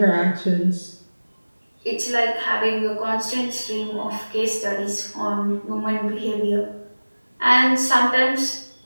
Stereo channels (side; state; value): both; inverted; correlation -1.00